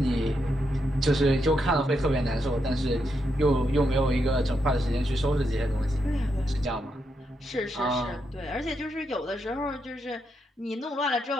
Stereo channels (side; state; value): both; normal; correlation 0.82